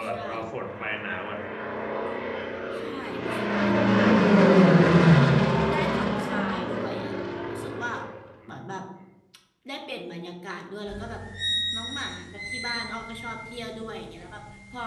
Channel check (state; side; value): identical; both; correlation 1.00